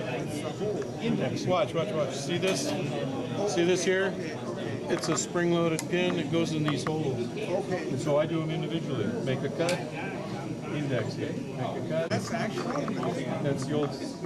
It's the whole. Watch. See this? See this here? It's a spring-loaded pin. It goes in these holes. Okay. And so I do them individually. Make a cut, index it. Make a cut. That's actually. That's the old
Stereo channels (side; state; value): both; identical; correlation 1.00